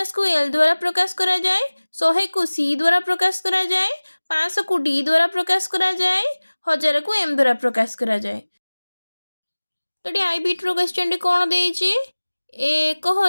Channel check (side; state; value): both; inverted; correlation -1.00